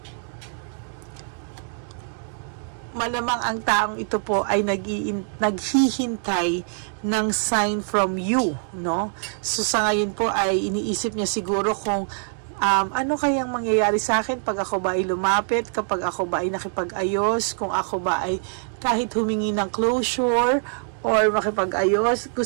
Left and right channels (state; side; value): silent; left; 63 dB below the other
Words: Malamang ang taong ito po ay naghihintay ng sign from you, no? So sa ngayon po ay iniisip niya siguro kung ano kayang mangyayari sa akin pag ako ba ay lumapit, kapag ako ba ay nakipag-ayos, kung ako ba ay kahit humingi ng closure or makipag-ayos.